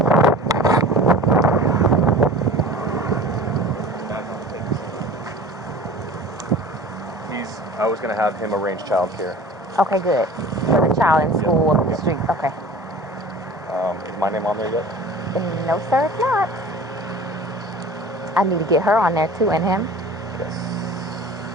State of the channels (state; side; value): normal; both; correlation 0.40